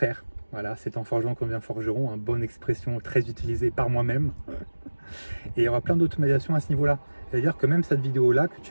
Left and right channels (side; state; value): both; inverted; correlation -1.00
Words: Voilà, c'est en forgeant qu'on devient forgeron, une bonne expression très utilisée par moi-même. Et il y aura plein d'automatisation à ce niveau-là. C'est-à-dire que même cette vidéo-là que